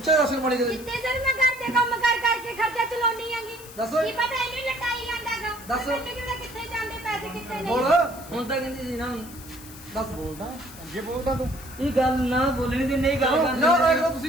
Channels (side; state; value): left; noise; hiss, 17 dB below the sound